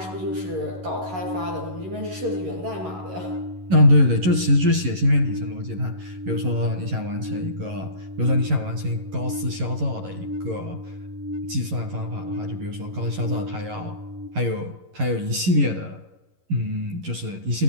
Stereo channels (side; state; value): left; late; 11 ms